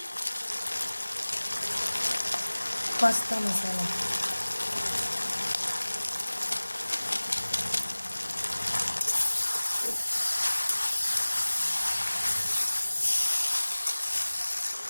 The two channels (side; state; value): both; inverted; correlation -1.00